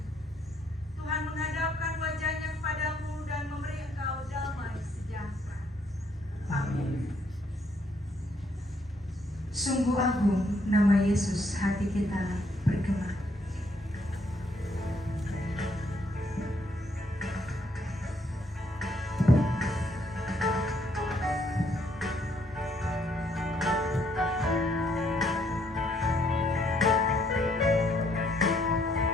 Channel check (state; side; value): normal; both; correlation 0.70